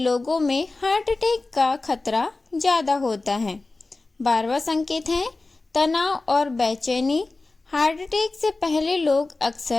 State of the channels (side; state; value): right; quieter; 3.3 dB